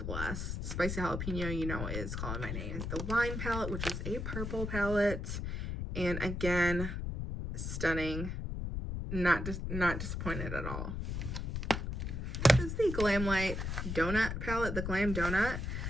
Spicy Jalapeno, you know, is calling my name. The Wine palette, which is a purple palette, and again, stunning. Not disappointed at all. This is the Glamlight Donut palette, the Glam Donut.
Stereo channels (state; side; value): noise; left; rumble, 3 dB below the sound